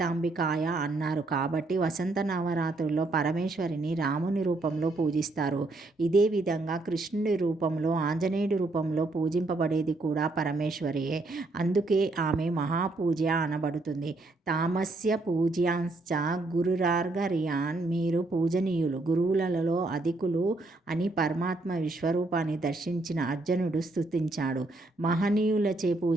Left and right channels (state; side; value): quieter; left; 3.1 dB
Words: అన్నారు కాబట్టి వసంత నవరాత్రుల్లో పరమేశ్వరిని రాముని రూపంలో పూజిస్తారు. ఇదే విధంగా కృష్ణుడి రూపంలో, ఆంజనేయుడి రూపంలో పూజింపబడేది కూడా పరమేశ్వరియే. అందుకే ఆమె మహాపూజ్య అనబడుతుంది. తామస్య పూజ్యాంశ్చ గురురార్ఘర్యాన్. మీరు పూజనీయులు, గురువులలో అధికులు అని పరమాత్మ విశ్వరూపాన్ని దర్శించిన అర్జునుడు స్తుతించాడు. మహనీయులచే